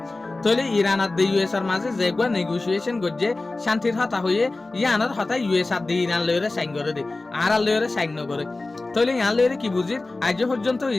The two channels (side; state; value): right; quieter; 3.2 dB